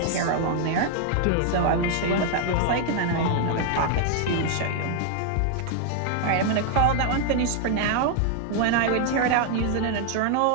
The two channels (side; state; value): both; different; correlation 0.00